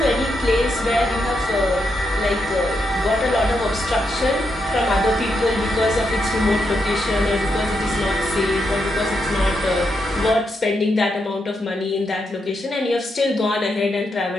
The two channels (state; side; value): normal; both; correlation 0.82